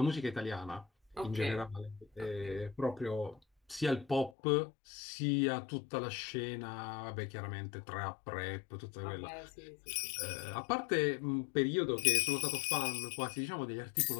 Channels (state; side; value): drops out; right; at 4.3 s